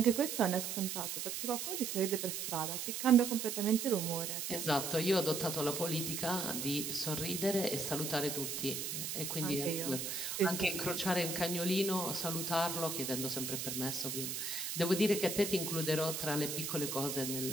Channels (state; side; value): noise; right; hiss, 4 dB below the sound